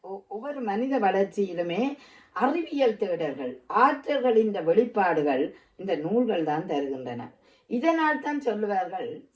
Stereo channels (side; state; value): both; identical; correlation 1.00